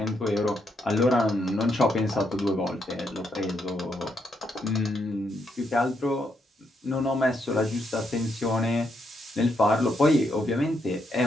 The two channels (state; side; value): normal; both; correlation 0.78